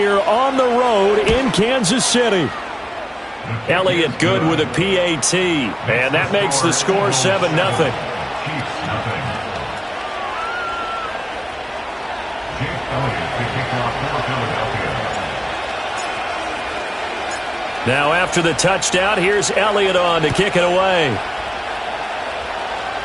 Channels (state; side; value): identical; both; correlation 1.00